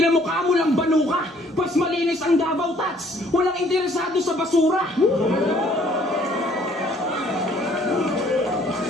mo lang banuka, pas malinis ang Davao Tats, walang interesado sa basura.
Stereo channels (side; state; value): both; normal; correlation 0.60